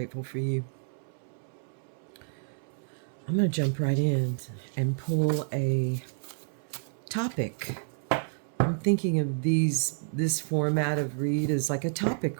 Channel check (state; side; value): silent; left; 58 dB below the other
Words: for you. I'm going to jump right in and pull a topic. I'm thinking of this format of read as like a